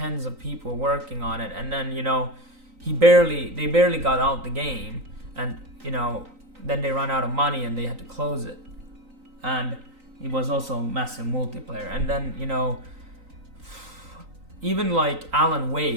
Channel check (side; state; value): left; late; 3.9 ms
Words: of people working on it, and then, you know, they barely got out the game, and, you know, then they ran out of money and they had to close it. And it was also massive multiplayer. And then, you know, even like Alan